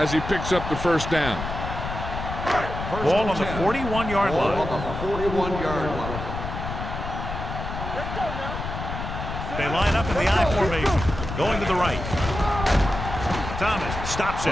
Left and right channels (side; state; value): left; noise; rumble, 6 dB below the sound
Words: he picks up the 1st down. Ball on the 41-yard Ball line. on the 41-yard line. Let's go now. They line up in the I formation. Going to the right. Thomas stops